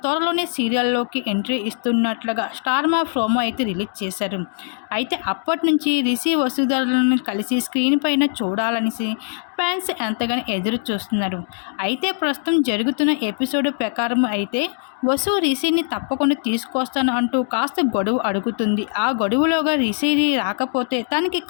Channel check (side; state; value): right; silent; digital silence